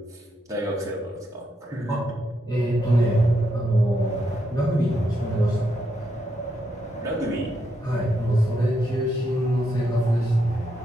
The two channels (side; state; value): both; normal; correlation 0.80